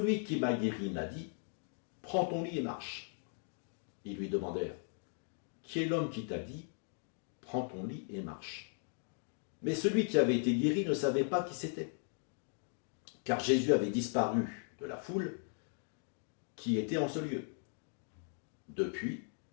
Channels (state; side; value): silent; right; 53 dB below the other